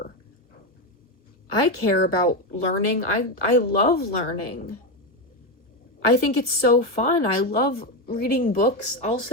I care about learning. I love learning. I think it's so fun. I love reading books. I'll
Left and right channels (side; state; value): right; late; 1.3 ms